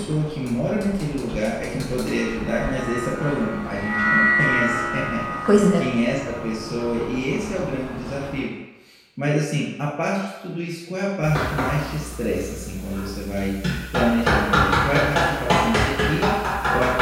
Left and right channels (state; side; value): identical; both; correlation 1.00